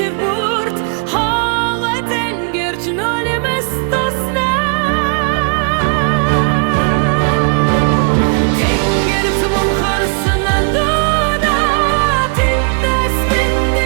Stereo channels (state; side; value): quieter; left; 38.7 dB